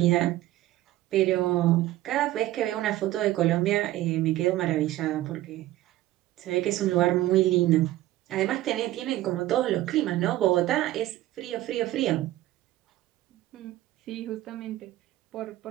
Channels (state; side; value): quieter; left; 15.4 dB